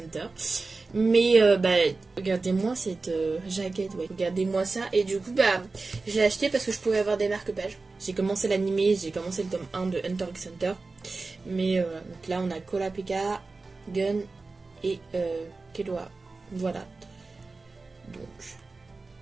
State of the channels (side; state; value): left; quieter; 3.7 dB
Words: Mais bah, regardez-moi cette jaquette, ouais. Regardez-moi ça. Et du coup, bah, je l'ai acheté parce que je pouvais avoir des marque-pages. J'ai commencé l'animé, j'ai commencé le tome 1 de Hunter x Hunter. Mais donc là, on a Kurapika, Gun et Killua. Voilà. Donc,